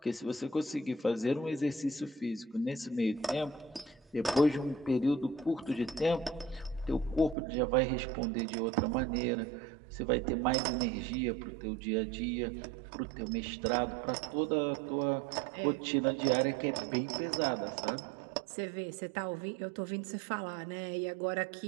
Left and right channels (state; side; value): drops out; left; at 7.4 s